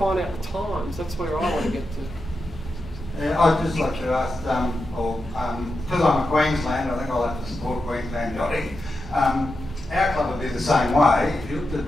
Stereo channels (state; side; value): normal; both; correlation 0.88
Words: out the times. That's where I want to get to. I'd just like to ask, because I'm a Queenslander, I think I'll have to support Queensland yachting. Our club would be the same way. If you looked at a